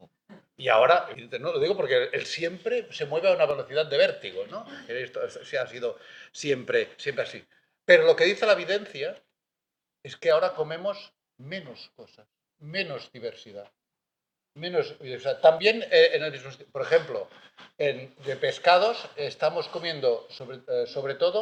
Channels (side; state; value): both; identical; correlation 1.00